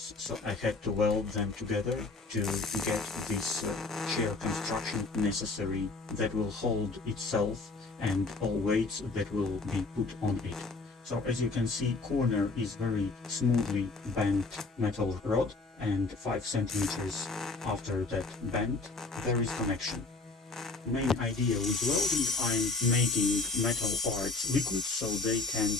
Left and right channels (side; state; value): right; quieter; 3.6 dB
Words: so I had to weld them together to get this chair construction necessary that will hold itself and all weights that will be put on it. So as you can see, corner is very smoothly bent metal rod, and 5 centimeters after that bend, there is connection. Main idea with welding, I'm making metal parts liquid so they can